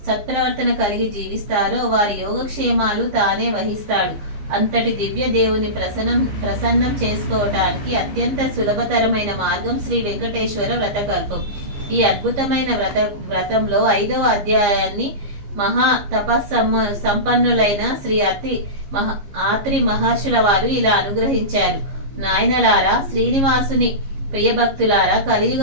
సత్ప్రవర్తన కలిగి జీవిస్తారో వారి యోగక్షేమాలు తానే వహిస్తాడు. అంతటి దివ్య దేవుని ప్రసన్నం చేసుకోవటానికి అత్యంత సులభతరమైన మార్గం శ్రీ వెంకటేశ్వర వ్రతకల్పం. ఈ అద్భుతమైన వ్రతంలో 5వ అధ్యాయాన్ని మహా సంపన్నులైన శ్రీ ఆత్రి మహర్షుల వారు ఇలా అనుగ్రహించారు. నాయనలారా, శ్రీనివాసుని ప్రియభక్తులారా, కలియుగ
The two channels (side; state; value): left; late; 15 ms